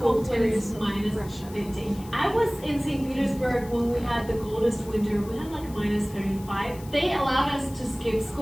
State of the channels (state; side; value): noise; left; hiss, 20 dB below the sound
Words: when it's minus 50. I was in St. Petersburg when we had the coldest winter. We had like minus 35. They allowed us to skip